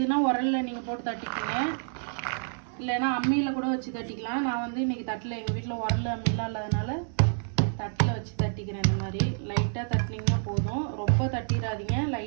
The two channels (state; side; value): silent; left; digital silence